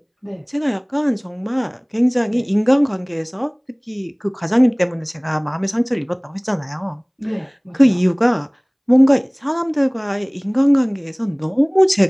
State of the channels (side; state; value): both; identical; correlation 1.00